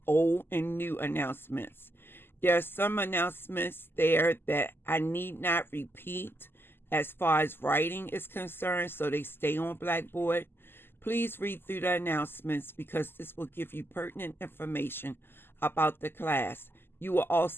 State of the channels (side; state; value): right; late; 0.11 ms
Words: old and new announcements. There are some announcements there that I need not repeat as far as writing is concerned, so they stay on Blackboard. Please read through the announcements because this will give you pertinent information about the class. You will